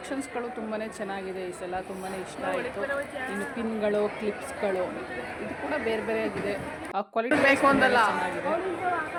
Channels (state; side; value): identical; both; correlation 1.00